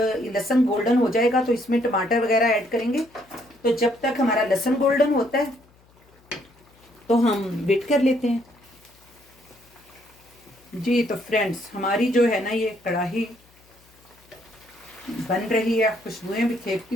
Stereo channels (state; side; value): noise; left; hum, 30 dB below the sound